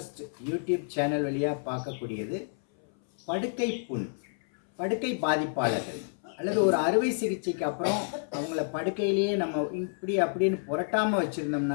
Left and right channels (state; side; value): silent; right; 58 dB below the other